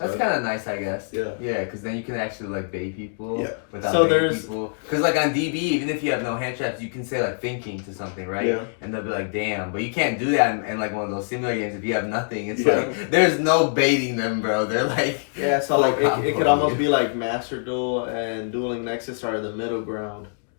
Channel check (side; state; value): right; silent; digital silence